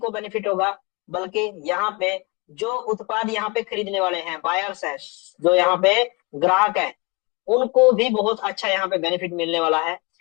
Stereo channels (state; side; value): quieter; right; 27.7 dB